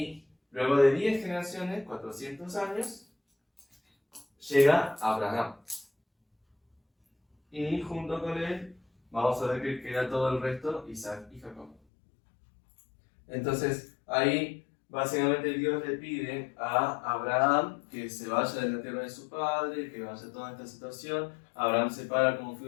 luego de 10 generaciones, 400 años, llega Abraham. Y junto con él, vamos a ver que queda todo el resto, Isaac y Jacob. Entonces, ahí básicamente Dios le pide a Abraham que se vaya de la tierra de su padre, que vaya a toda esta situación. Abraham se para como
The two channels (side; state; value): right; drops out; at 11.8 s